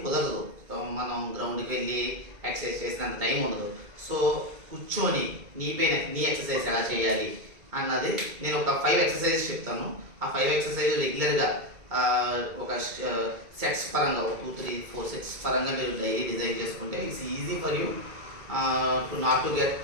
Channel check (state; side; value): late; left; 2.2 ms